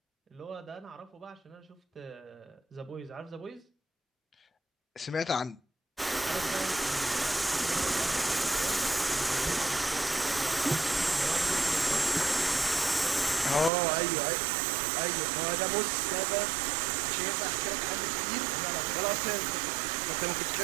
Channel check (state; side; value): drops out; left; at 13.7 s